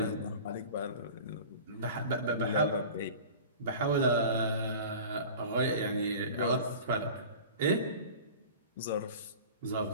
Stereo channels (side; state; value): both; inverted; correlation -0.38